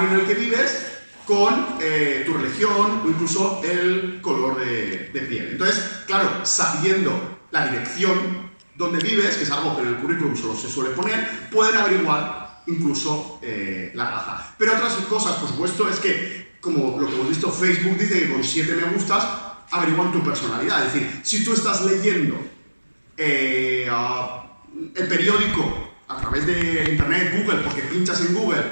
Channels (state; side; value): inverted; both; correlation -1.00